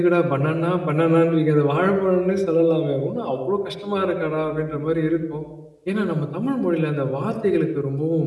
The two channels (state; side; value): identical; both; correlation 1.00